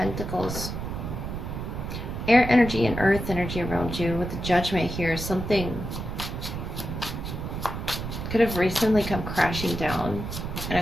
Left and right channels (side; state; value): right; noise; rumble, 6 dB below the sound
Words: Air energy and earth energy around you with the Judgment here. Something could have recently come crashing down. And